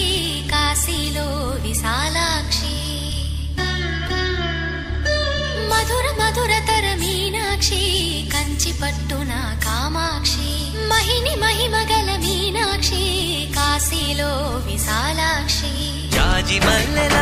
కాశీలో విశాలాక్షి మధుర మధురతర మీనాక్షి కంచి పట్టున కామాక్షి మహిని మహిమగల మీనాక్షి కాశీలో విశాలాక్షి జాజి మల్లెల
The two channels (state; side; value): identical; both; correlation 1.00